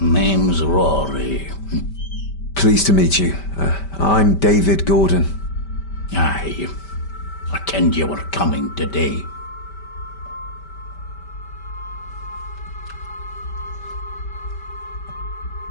Rory. Pleased to meet you. I'm David Gordon. Aye. I kenned you were coming today.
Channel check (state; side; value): late; right; 5.1 ms